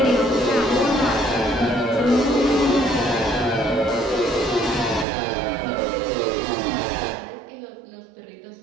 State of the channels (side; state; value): left; drops out; at 5.1 s